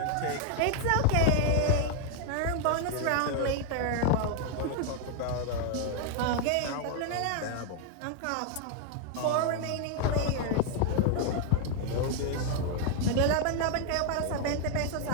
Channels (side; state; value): both; different; correlation 0.00